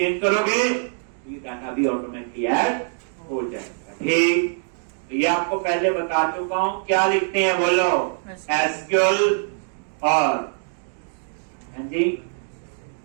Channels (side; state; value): left; silent; digital silence